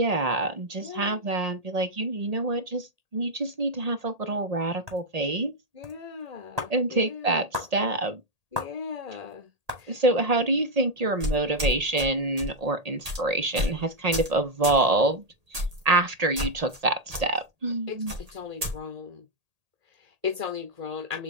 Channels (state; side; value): late; left; 1.8 ms